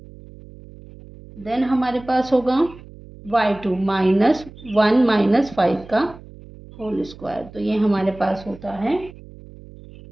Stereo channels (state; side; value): noise; right; hum, 19 dB below the sound